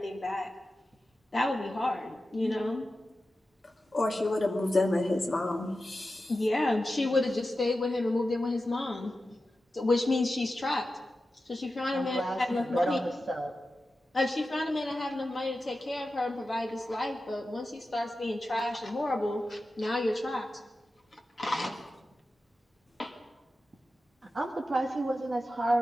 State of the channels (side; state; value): both; normal; correlation 0.93